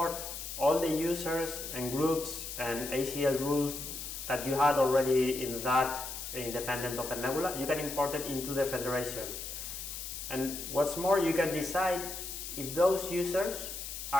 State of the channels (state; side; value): noise; left; hiss, 7 dB below the sound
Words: all the users and groups and ACL rules that you had already in that independent OpenNebula. You can import it into the federation. And what's more, you can decide if those users